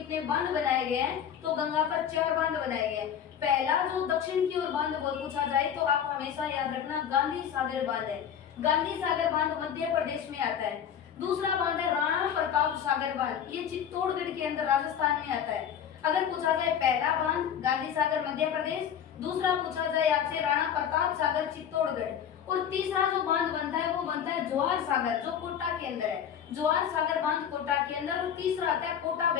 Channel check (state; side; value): quieter; right; 8.7 dB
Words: बांध बनाए गए हैं, तो गंगा पर 4 बांध बनाए गए। पहला जो दक्षिण की ओर बांध वो पूछा जाए तो आप हमेशा याद रखना गांधी सागर बांध है। गांधी सागर बांध मध्य प्रदेश में आता है। दूसरा बांध है राणा प्रताप सागर बांध, ये चित्तौड़गढ़ के अंदर राजस्थान में आता है। अगर पूछा जाए पहला बांध गांधी सागर मध्य प्रदेश, दूसरा पूछा जाए आपसे राणा प्रताप सागर चित्तौड़गढ़, और तीसरा जो बांध बनता है वो बनता है जवाहर सागर जो कोटा के अंदर है। जवाहर सागर बांध कोटा के अंदर, और तीसरा आता है कोटा